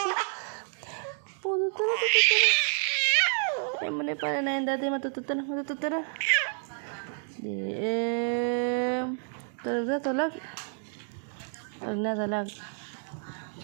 Ay mo na pala na yung dati matutut na. Talag na. Talag na. Talag.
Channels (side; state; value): left; silent; 58 dB below the other